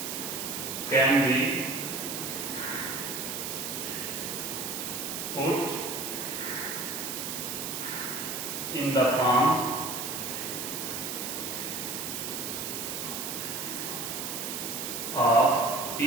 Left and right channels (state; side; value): noise; right; hiss, 4 dB below the sound